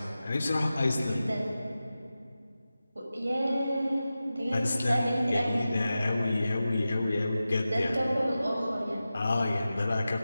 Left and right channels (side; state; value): both; inverted; correlation -0.94